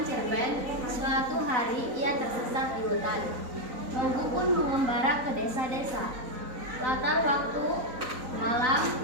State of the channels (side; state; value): left; late; 3.9 ms